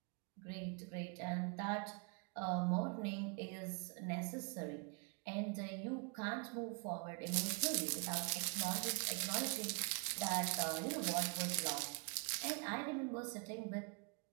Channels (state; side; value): quieter; left; 34.4 dB